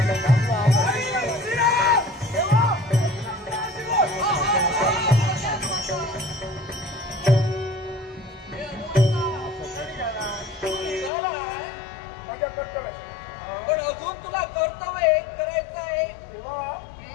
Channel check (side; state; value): right; drops out; at 11.1 s